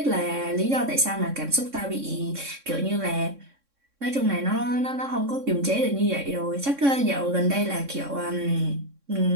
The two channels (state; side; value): late; left; 3.6 ms